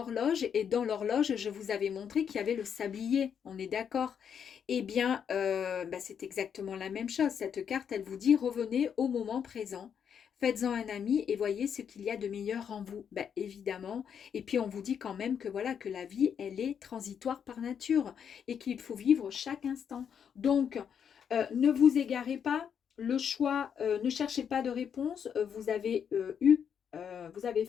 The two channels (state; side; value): quieter; right; 7.8 dB